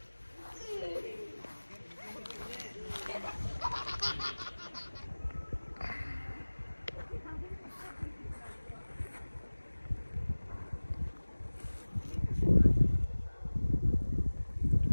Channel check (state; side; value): inverted; both; correlation -1.00